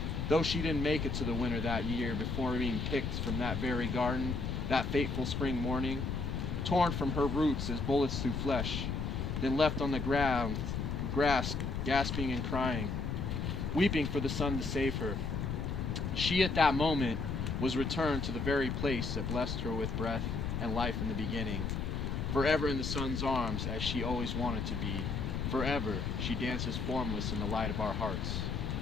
Though she didn't make it to the winter that year before being picked from that very garden, that fateful spring morning, torn from her roots as bullets through flesh, then left on the ground, grass, gasping and crying, weeping for the sun to save her. She at that moment was returned to the very place that blessed her with breath and life in the beginning, forever in the sun's arms as she always wanted to be. Forever she dances formless in the light of our hearts.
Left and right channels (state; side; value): noise; left; rumble, 2 dB below the sound